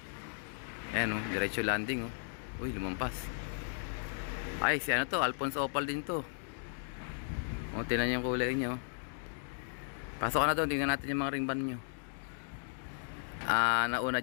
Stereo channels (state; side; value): silent; right; digital silence